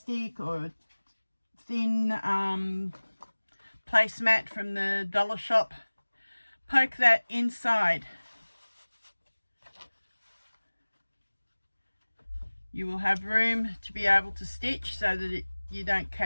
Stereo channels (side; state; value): both; inverted; correlation -1.00